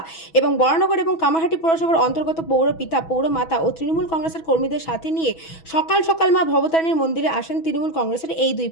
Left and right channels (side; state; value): right; late; 6.1 ms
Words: এবং বরানগর এবং কামারহাটি পৌরসভার অন্তর্গত পৌর পিতা, পৌরমাতা ও তৃণমূল কংগ্রেসের কর্মীদের সাথে নিয়ে সকাল সকাল মা ভবতারিণীর মন্দিরে আসেন তৃণমূল কংগ্রেসের এই দুই